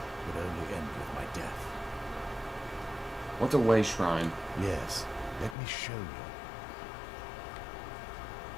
would only end with my death. What's a way shrine? Yes, let me show you.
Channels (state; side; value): drops out; right; at 5.6 s